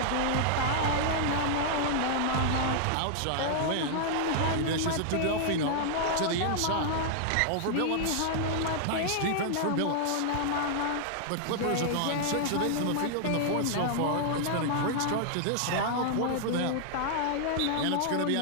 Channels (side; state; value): both; different; correlation -0.01